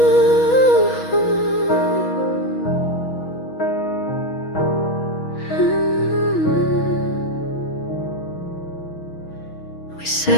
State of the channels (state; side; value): late; right; 6.2 ms